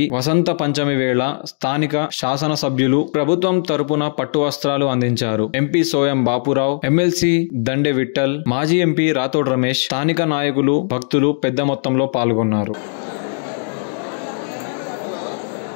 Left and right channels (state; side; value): silent; right; digital silence